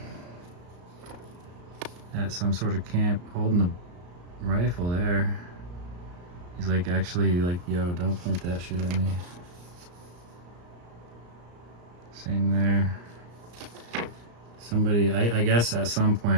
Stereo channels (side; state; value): left; late; 34 ms